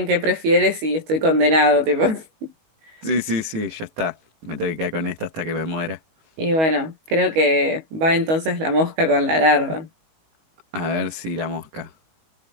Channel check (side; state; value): left; late; 19 ms